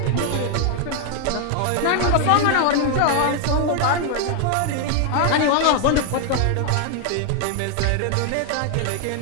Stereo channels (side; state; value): both; different; correlation 0.00